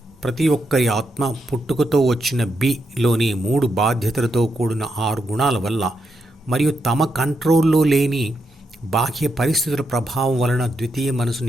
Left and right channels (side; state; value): both; normal; correlation 0.82